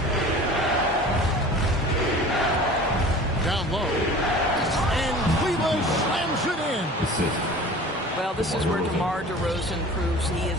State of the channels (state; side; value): normal; both; correlation 0.42